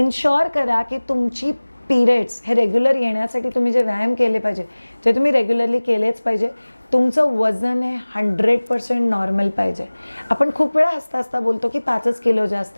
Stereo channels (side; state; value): both; inverted; correlation -1.00